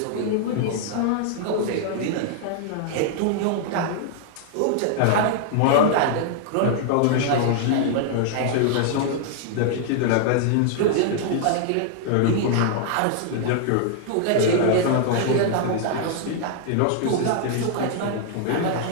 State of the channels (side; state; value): both; different; correlation -0.01